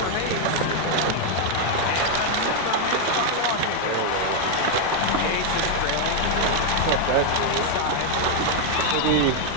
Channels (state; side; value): different; both; correlation 0.01